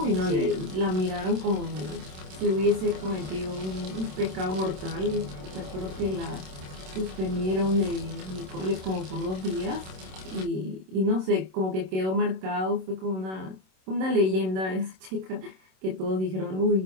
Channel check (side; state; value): left; late; 27 ms